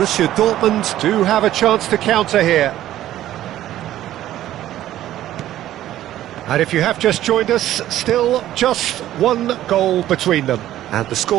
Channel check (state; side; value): quieter; left; 13.2 dB